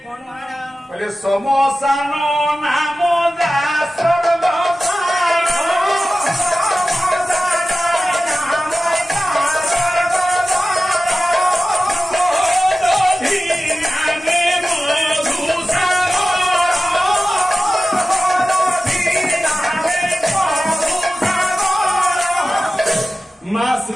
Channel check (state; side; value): normal; both; correlation 0.95